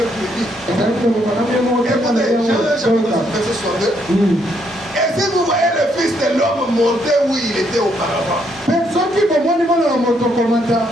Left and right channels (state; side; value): normal; both; correlation 0.73